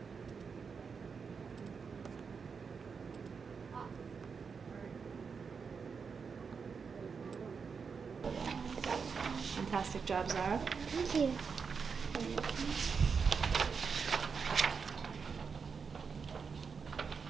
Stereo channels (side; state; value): left; quieter; 5.6 dB